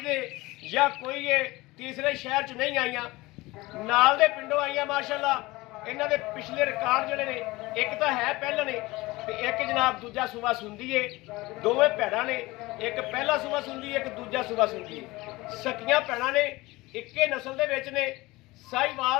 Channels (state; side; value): quieter; right; 20.9 dB